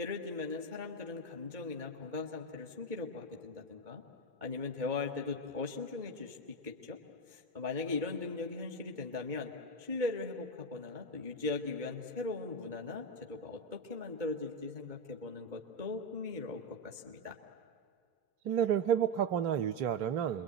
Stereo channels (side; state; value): left; late; 2.2 ms